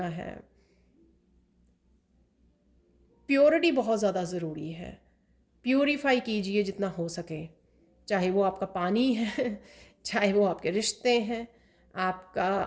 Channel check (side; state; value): both; identical; correlation 1.00